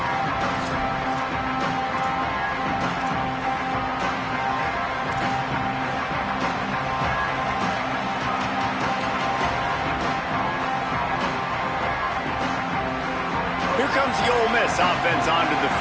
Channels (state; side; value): identical; both; correlation 1.00